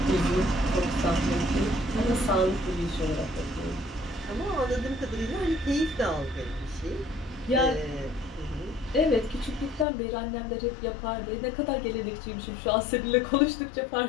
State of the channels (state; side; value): drops out; right; at 9.9 s